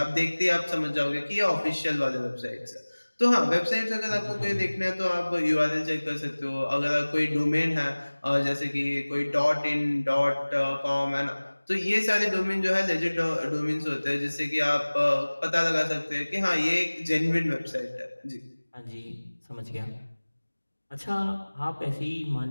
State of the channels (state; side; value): inverted; both; correlation -1.00